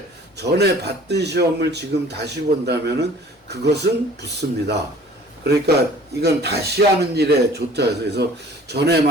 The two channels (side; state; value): both; normal; correlation 0.50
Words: 전에 봤던 시험을 지금 다시 본다면은 그것은 붙습니다. 그러니까 이건 다시 하는 일에 좋다 해서, 그래서 전에